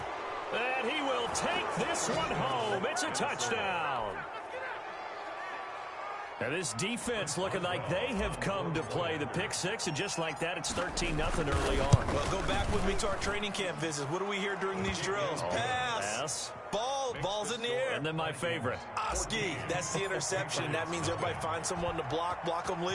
And he will take this one home. It's a touchdown. And this defense looking like they have come to play. The pick six, and just like that, it's 13-0 early on. Well, go back with me to our training camp visits. What do we hear during these drills? Pass. Ball's in the air. And then my favorite. Oski, that's the interception. That means everybody finds someone to block them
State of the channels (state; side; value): identical; both; correlation 1.00